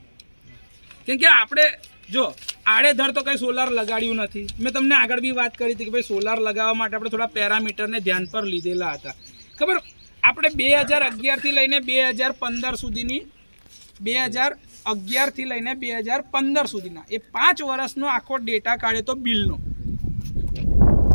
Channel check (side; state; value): both; inverted; correlation -1.00